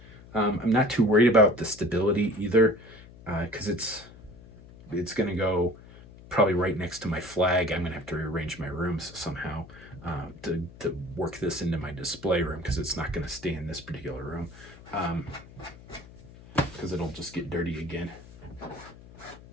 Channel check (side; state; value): left; noise; hum, 20 dB below the sound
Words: I'm not too worried about the stability either, because it's going to go probably right next to my flag. I'm gonna have to rearrange my rooms somehow to work this into my display room, because it's not gonna stay in this particular room, because it'll just get dirty again.